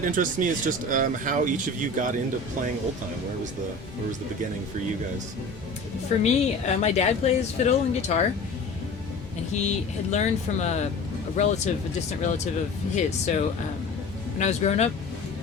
interests me is just how each of you got into playing old time. Where was the beginning for you guys? For me, my dad plays fiddle and guitar, and he had learned from a distant relative of his. So when I was growing up,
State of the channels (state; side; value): quieter; right; 3.2 dB